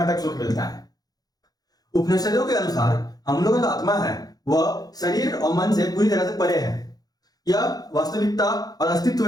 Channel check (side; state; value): right; late; 0.19 ms